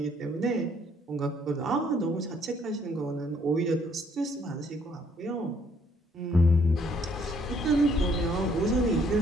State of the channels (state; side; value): normal; both; correlation 0.65